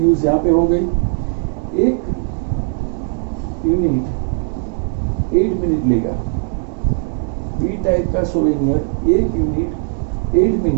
यहाँ पे हो गई, एक यूनिट 8 मिनट लेगा। बी टाइप का सोवेनियर एक यूनिट 8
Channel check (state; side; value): silent; left; 56 dB below the other